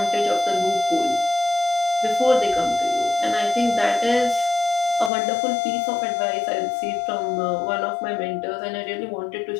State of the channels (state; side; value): drops out; right; at 5.1 s